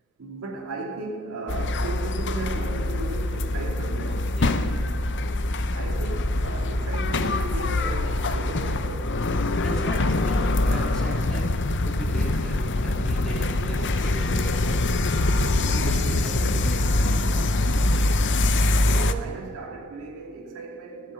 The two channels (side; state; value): both; normal; correlation 0.72